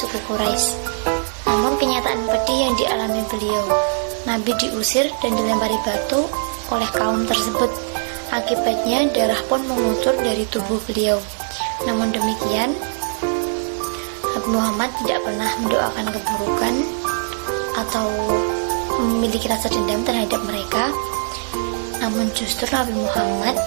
Quraisy. Namun kenyataan pedih yang dialami beliau, Nabi diusir dan dilempari batu oleh kaum tersebut. Akibatnya darah pun mengucur dari tubuh beliau. Namun demikian, Nabi Muhammad tidak pernah mendoakan keburukan atau memiliki rasa dendam terhadap mereka. Namun justru Nabi Muhammad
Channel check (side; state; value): left; silent; digital silence